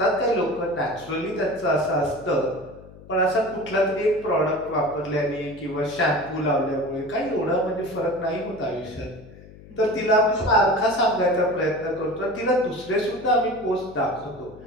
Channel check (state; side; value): noise; left; hum, 20 dB below the sound